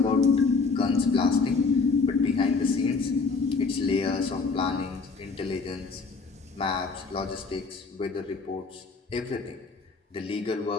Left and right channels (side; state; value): right; quieter; 4.5 dB